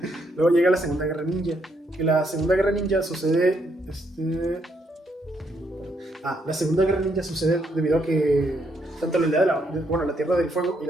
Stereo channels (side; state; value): both; normal; correlation 0.75